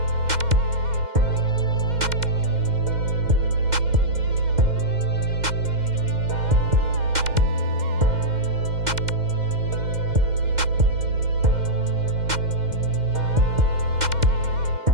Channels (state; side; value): late; left; 2.1 ms